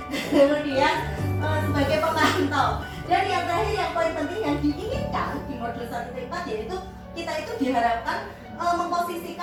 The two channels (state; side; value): identical; both; correlation 1.00